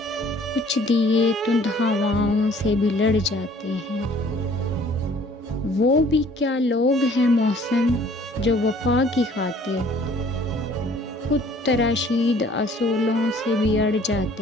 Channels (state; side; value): normal; both; correlation 0.55